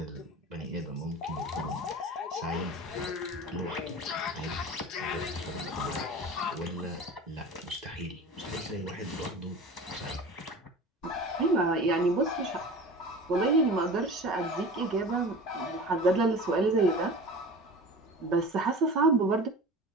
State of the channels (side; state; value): both; normal; correlation 0.36